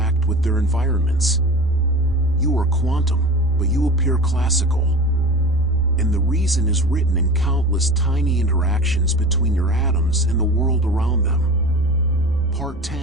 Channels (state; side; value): normal; both; correlation 0.34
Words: with their environments. You are quantum, but you appear classical. And the reason is written in countless tiny interactions between your atoms and the world around them. Part